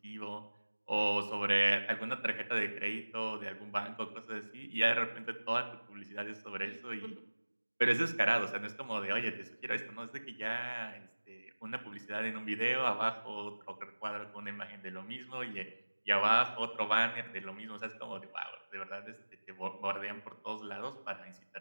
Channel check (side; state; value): both; inverted; correlation -1.00